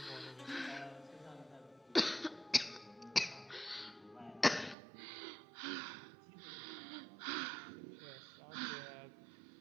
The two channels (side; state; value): left; drops out; at 4.8 s